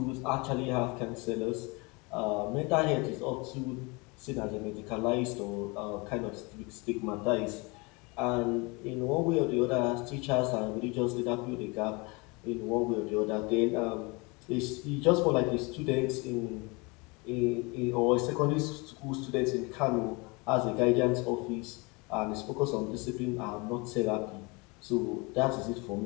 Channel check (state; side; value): quieter; right; 27.8 dB